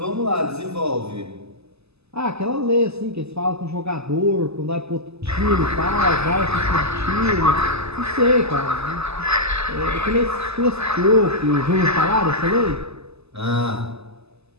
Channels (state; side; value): late; left; 0.79 ms